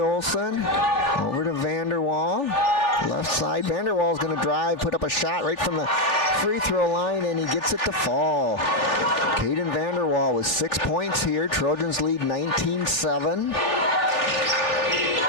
Over to Vanderwall. Left side. Vanderwall's going to drive, put up a shot right from the free throw line, and he gets it to fall. Caden Vanderwall with 6 points here. Trojans lead 19-7.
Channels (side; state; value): right; late; 3.4 ms